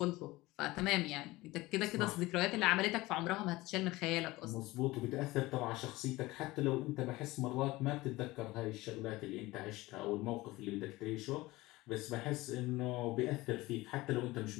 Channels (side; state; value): right; quieter; 19.7 dB